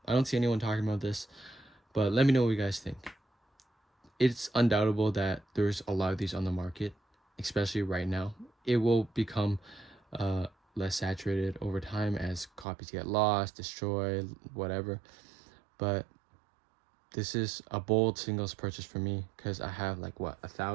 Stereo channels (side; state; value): left; drops out; at 12.7 s